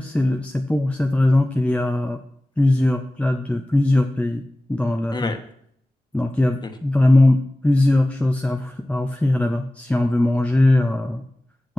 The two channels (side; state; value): both; normal; correlation 0.97